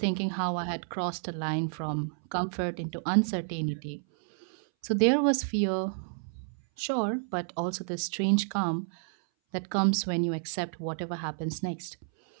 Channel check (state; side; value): silent; left; 58 dB below the other